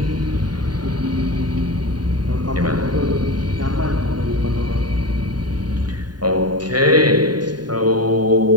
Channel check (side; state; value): left; late; 0.70 ms